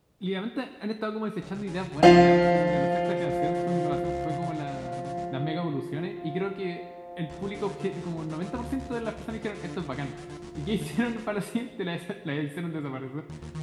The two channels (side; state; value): both; identical; correlation 1.00